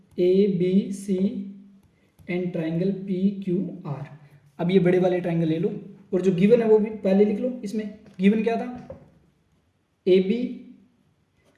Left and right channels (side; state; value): both; identical; correlation 1.00